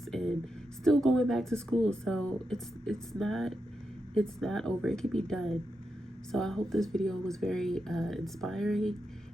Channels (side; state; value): both; normal; correlation 0.87